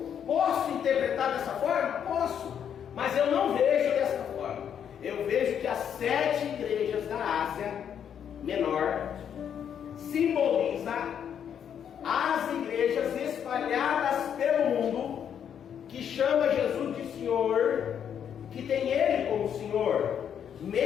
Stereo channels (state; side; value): quieter; right; 8.6 dB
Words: Posso interpretar dessa forma? Posso, mas eu não vejo dessa forma. Eu vejo que as 7 igrejas da Ásia Menor simboliza as igrejas espalhadas pelo mundo que chama Jesus de Senhor, que tem Ele como Senhor,